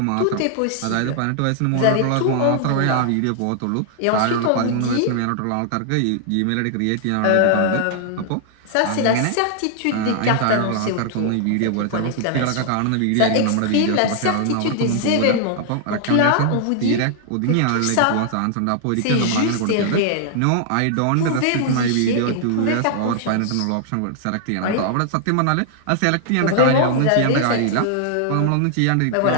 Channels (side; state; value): both; different; correlation -0.01